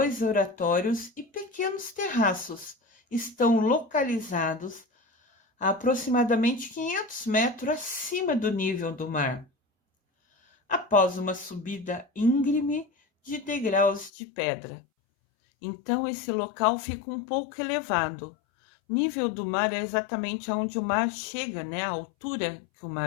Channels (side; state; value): right; drops out; at 14.1 s